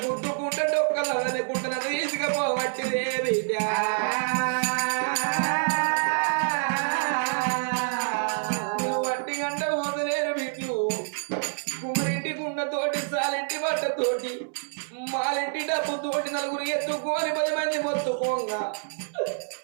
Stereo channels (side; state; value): left; silent; 60 dB below the other